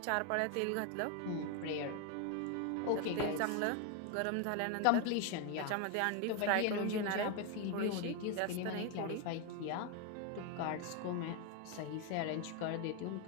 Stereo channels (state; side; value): different; both; correlation 0.01